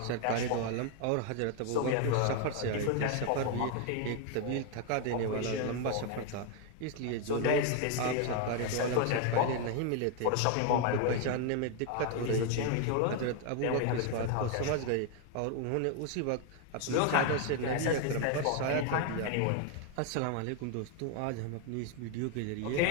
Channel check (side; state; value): both; different; correlation 0.01